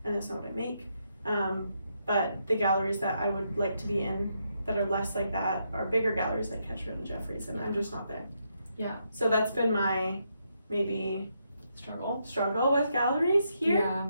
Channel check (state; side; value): inverted; both; correlation -0.79